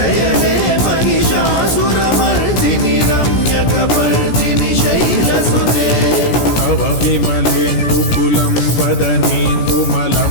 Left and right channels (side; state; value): right; late; 17 ms